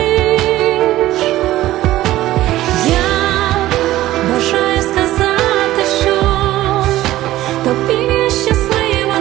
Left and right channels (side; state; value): left; quieter; 15.4 dB